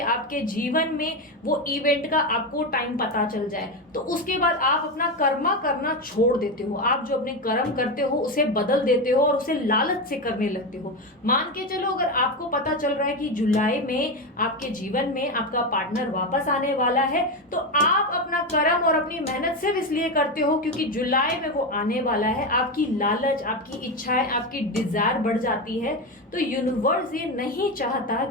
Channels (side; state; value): both; normal; correlation 0.14